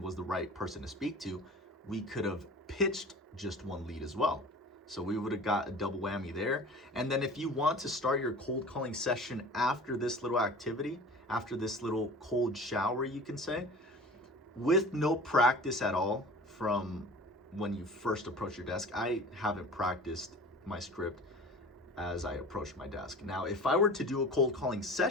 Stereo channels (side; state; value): both; normal; correlation 0.40